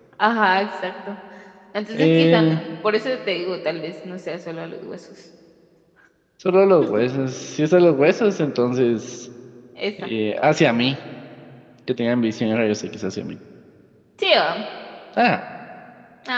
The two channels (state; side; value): identical; both; correlation 1.00